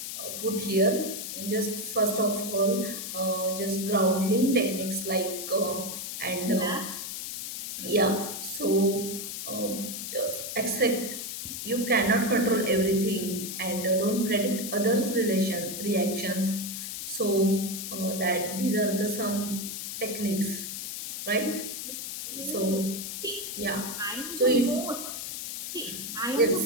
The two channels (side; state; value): left; noise; hiss, 6 dB below the sound